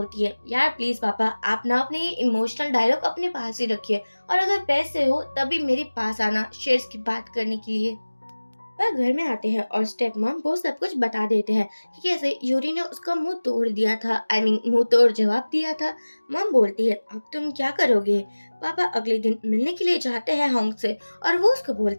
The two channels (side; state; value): both; inverted; correlation -1.00